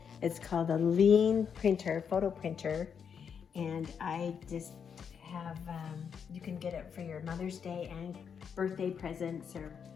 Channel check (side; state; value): right; quieter; 7.1 dB